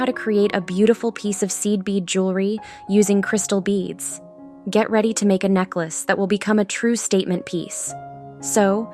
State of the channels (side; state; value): both; identical; correlation 1.00